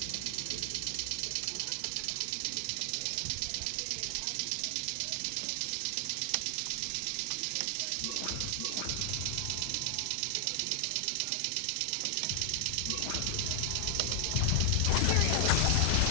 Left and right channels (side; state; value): both; different; correlation 0.00